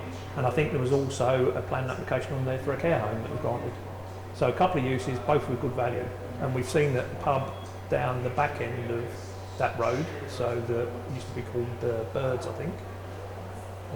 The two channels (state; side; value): identical; both; correlation 1.00